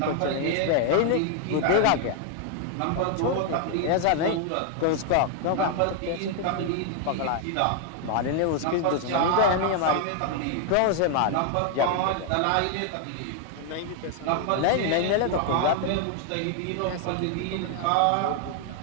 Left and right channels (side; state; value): both; different; correlation 0.00